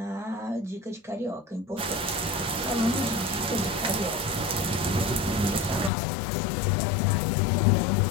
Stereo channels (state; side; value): drops out; right; at 5.9 s